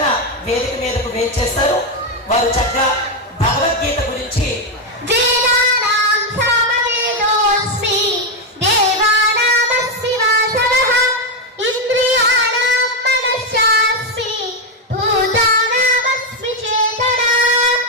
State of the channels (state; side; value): normal; both; correlation 0.05